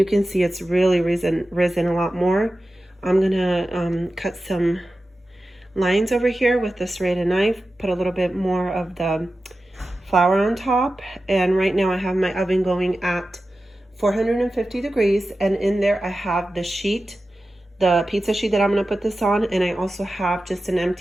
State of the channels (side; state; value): both; normal; correlation 0.94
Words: can see it's really risen a lot more. I'm gonna cut some lines over here with the serrated knife, put a little bit more of the flour on top, and right now I have my oven going at 450 degrees, and in there I have the sheet, the pizza sheet that I'm gonna put this on, and I also have just an